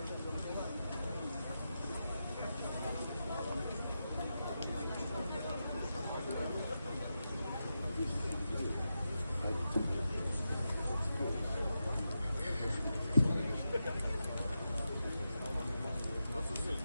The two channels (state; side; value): inverted; both; correlation -0.89